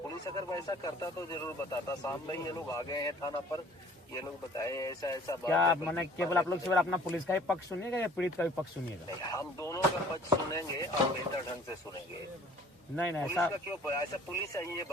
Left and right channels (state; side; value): normal; both; correlation 0.52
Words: पुलिस अगर वैसा करता तो जरूर बताता। शाम में ये लोग आ गए हैं थाना पर, ये लोग बताए ऐसा ऐसा बात। क्या मैंने केवल आप लोग केवल अपना पुलिस का ही पक्ष सुनिएगा या पीड़ित का भी पक्ष सुनिएगा? हम दोनों का पक्ष सुनेंगे और बेहतर ढंग से सुनेंगे। नहीं पुलिस का क्यों ऐसा? पुलिस है ये